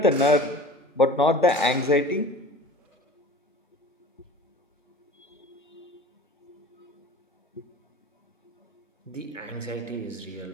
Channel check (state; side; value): normal; both; correlation 0.40